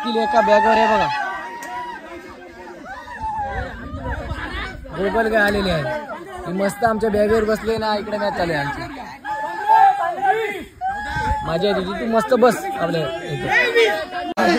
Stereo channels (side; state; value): both; identical; correlation 1.00